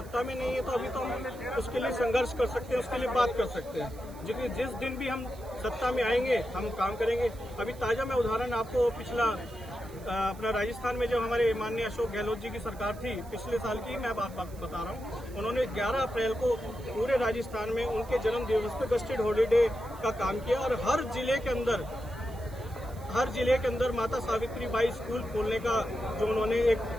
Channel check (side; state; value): right; noise; hiss, 23 dB below the sound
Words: में नहीं है तो अभी तो हम उसके लिए संघर्ष कर सकते हैं, उसके लिए बात कर सकते हैं। जिस दिन भी हम सत्ता में आएंगे हम काम करेंगे। अभी ताजा मैं उदाहरण आपको पिछला अपना राजस्थान में जब हमारे माननीय अशोक गहलोत जी की सरकार थी, पिछले साल की मैं बात बता रहा हूँ, उन्होंने 11 अप्रैल को पूरे राजस्थान में उनके जन्म दिवस पे गस्टेड हॉलीडे का काम किया और हर जिले के अंदर माता सावित्री बाई स्कूल खोलने का जो उन्होंने